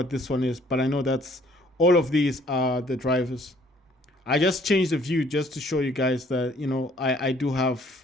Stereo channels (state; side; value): normal; both; correlation 0.60